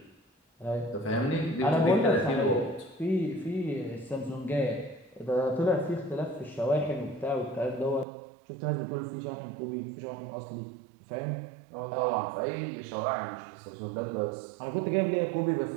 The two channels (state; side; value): drops out; left; at 8.1 s